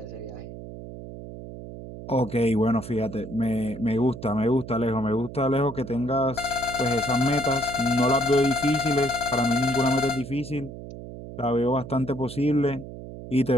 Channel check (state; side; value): noise; right; hum, 12 dB below the sound